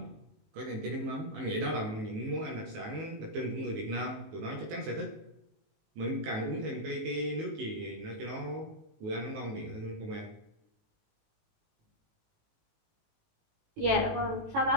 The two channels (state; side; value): late; left; 19 ms